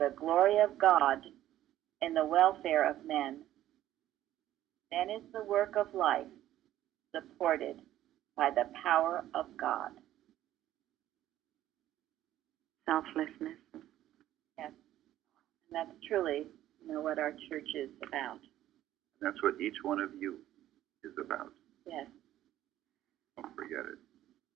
glory of God and the welfare of men. Then is the work of life supported by the power of God. Selflessness. Yes. And that's truly, what our church is about. That's what each one of you is about. Yes. Don't forget it.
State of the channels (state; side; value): quieter; left; 13.2 dB